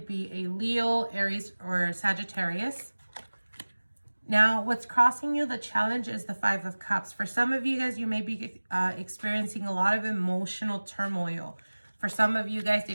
be a Leo, Aries, or Sagittarius. Now, what's crossing you, the challenge, is the Five of Cups. For some of you guys, you may be experiencing a lot of emotional turmoil. For some of you guys,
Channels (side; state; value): both; inverted; correlation -1.00